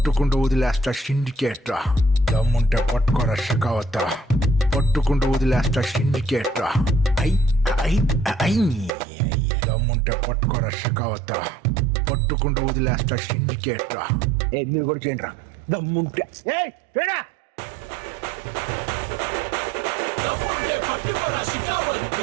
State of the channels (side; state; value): left; drops out; at 9.0 s